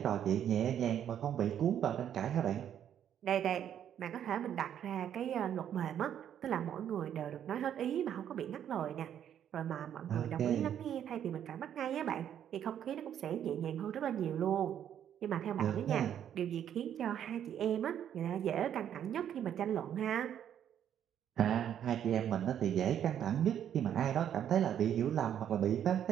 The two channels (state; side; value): quieter; left; 9.7 dB